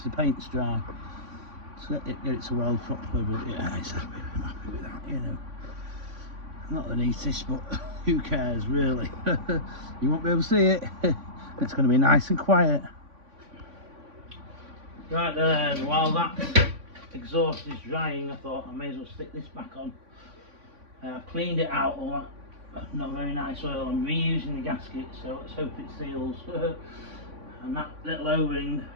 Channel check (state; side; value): late; left; 3.5 ms